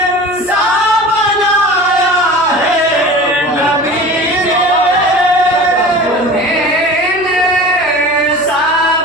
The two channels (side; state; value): right; noise; hum, 22 dB below the sound